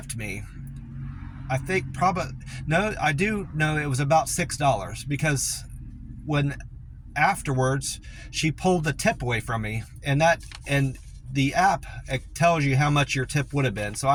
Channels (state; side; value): identical; both; correlation 1.00